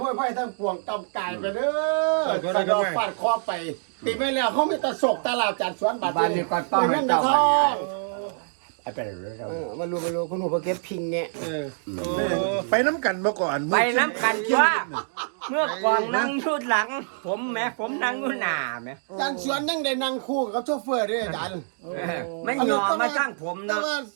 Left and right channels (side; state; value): left; silent; digital silence